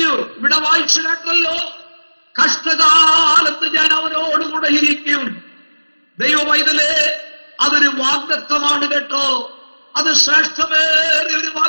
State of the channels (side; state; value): both; inverted; correlation -1.00